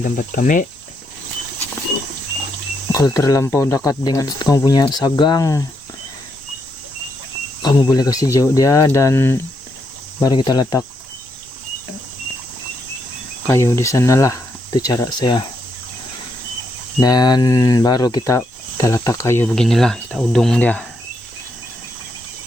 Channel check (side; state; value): both; normal; correlation 0.79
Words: kami. Kalau terlampau dekat dengan kamu punya sagang, kamu boleh kasih jauh dia, dan baru kita letak kayu di sana lah. Itu cara saya. Dan baru kita letak kayu beginilah, kita udung dia.